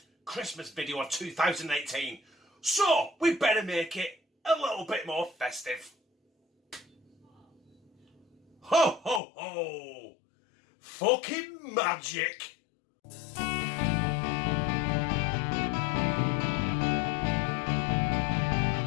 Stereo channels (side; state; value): right; drops out; at 9.2 s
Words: Christmas video of 2018, so we better make it a little bit more festive. Ho ho ho! Fucking magic!